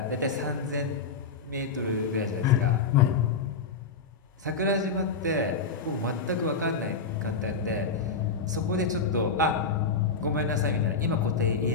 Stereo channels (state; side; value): quieter; right; 4.8 dB